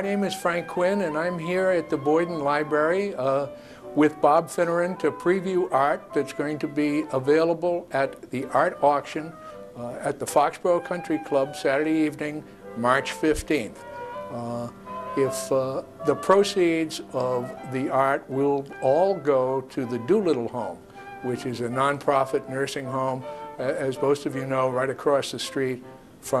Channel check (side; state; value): both; identical; correlation 1.00